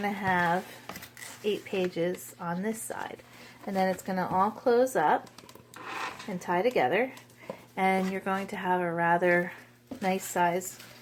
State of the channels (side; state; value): both; identical; correlation 1.00